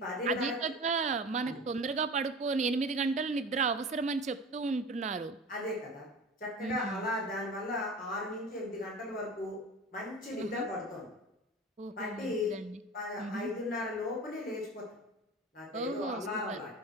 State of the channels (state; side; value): normal; both; correlation 0.35